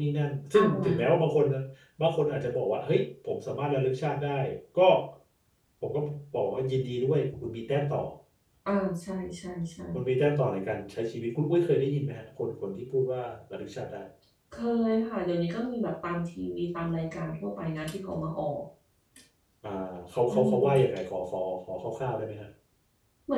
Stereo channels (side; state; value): both; identical; correlation 1.00